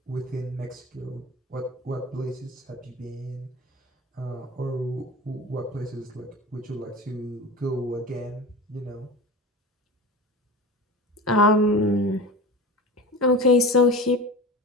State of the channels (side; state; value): both; normal; correlation 0.32